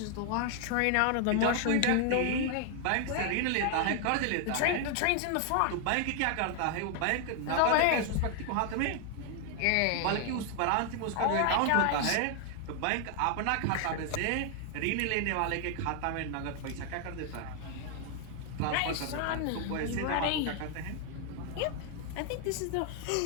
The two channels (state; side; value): different; both; correlation 0.00